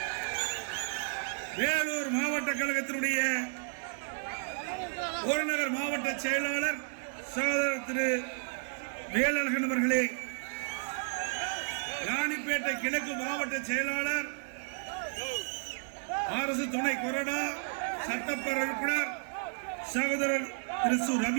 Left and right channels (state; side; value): silent; left; 56 dB below the other